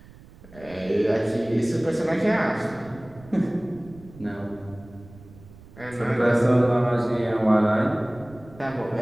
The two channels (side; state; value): right; noise; rumble, 21 dB below the sound